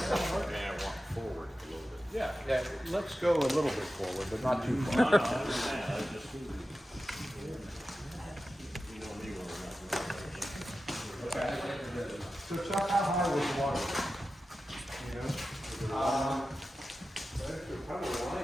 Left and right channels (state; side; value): normal; both; correlation 0.93